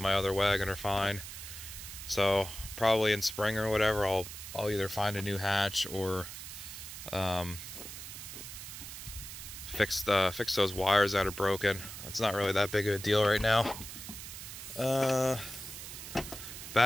my other wagon are fine. So probably in spring or whatever, I'll either find a new hatch or fix those wires that are broken. It's not really that big of a deal right now.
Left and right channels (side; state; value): right; noise; hiss, 10 dB below the sound